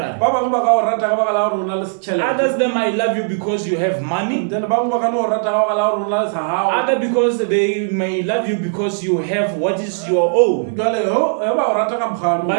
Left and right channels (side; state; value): left; silent; 67 dB below the other